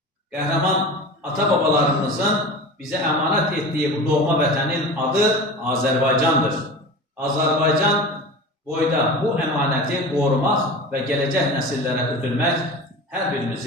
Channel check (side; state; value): both; normal; correlation 0.33